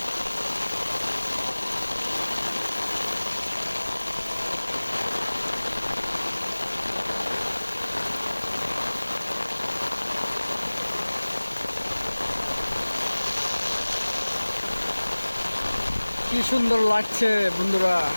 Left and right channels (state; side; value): inverted; both; correlation -1.00